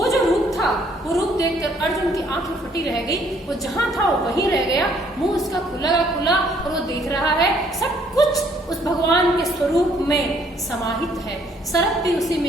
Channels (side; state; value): both; normal; correlation 0.64